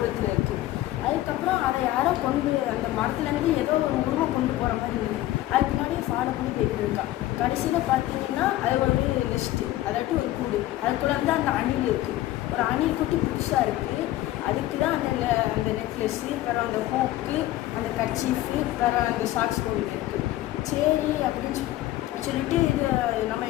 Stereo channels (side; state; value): right; quieter; 15.4 dB